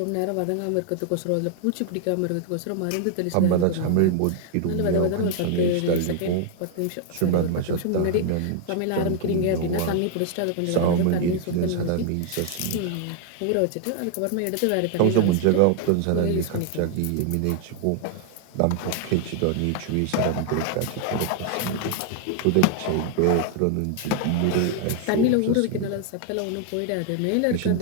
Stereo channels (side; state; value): both; different; correlation 0.00